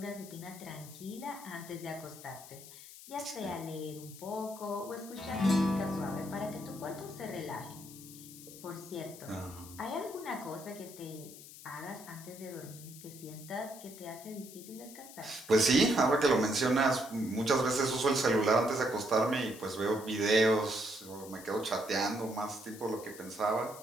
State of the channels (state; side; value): noise; left; hiss, 16 dB below the sound